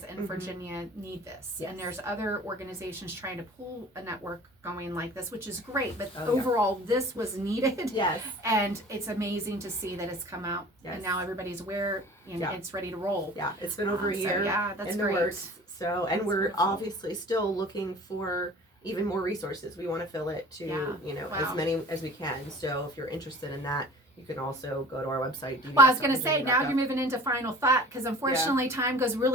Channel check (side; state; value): both; normal; correlation 0.43